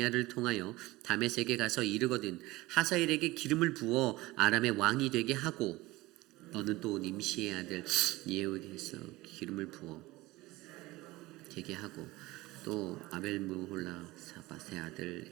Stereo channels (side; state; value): left; quieter; 19.7 dB